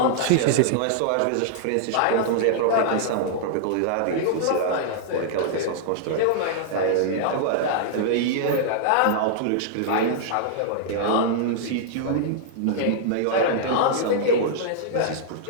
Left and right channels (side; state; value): both; different; correlation -0.01